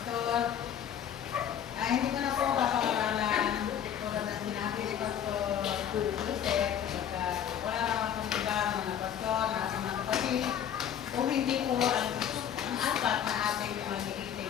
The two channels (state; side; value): quieter; right; 9.4 dB